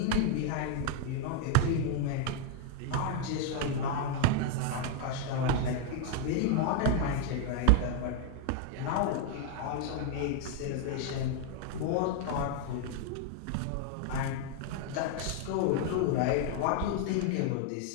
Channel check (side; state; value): both; different; correlation 0.00